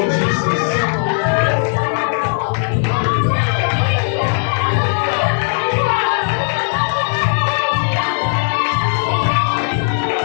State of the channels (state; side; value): silent; right; digital silence